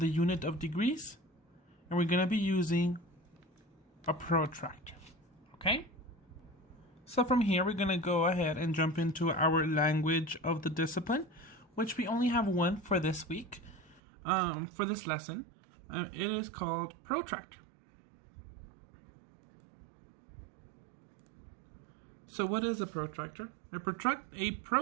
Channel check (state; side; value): drops out; left; at 14.0 s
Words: unit of degrees, and we're going to be using a protractor. Okay? So from here, we're going to go ahead and jump into our language of the discipline, which we only have one for this week, for this lesson. It is called protractor. So what is a protractor? A